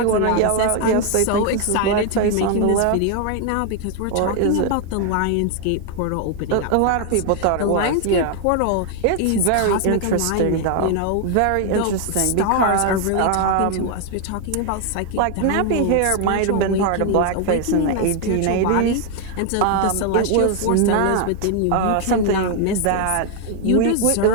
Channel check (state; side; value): different; both; correlation 0.00